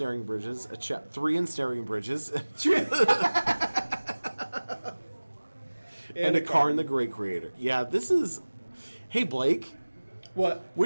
Bridges, 3 Ensnaring Bridges, and a Karn the Great Creator. Yeah, this is... Hey, Blake. What?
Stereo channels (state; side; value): inverted; both; correlation -1.00